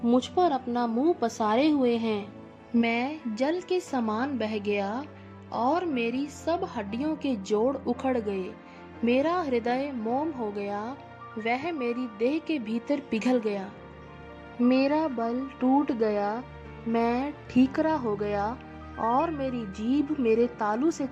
मुझ पर अपना मुंह पसारे हुए हैं। मैं जल के समान बह गया और मेरी सब हड्डियों के जोड़ उखड़ गए। मेरा हृदय मोम हो गया, वह मेरी देह के भीतर पिघल गया। मेरा बल टूट गया, मैं ठीकरा हो गया और मेरी जीभ मेरे तालू से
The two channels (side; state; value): both; identical; correlation 1.00